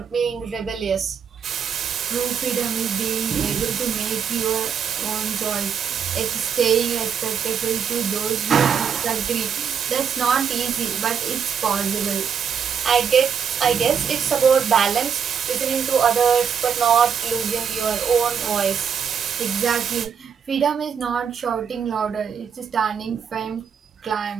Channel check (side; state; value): left; quieter; 7.2 dB